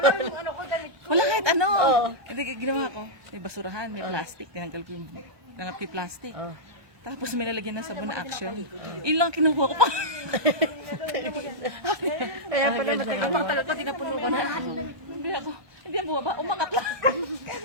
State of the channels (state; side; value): late; left; 1.2 ms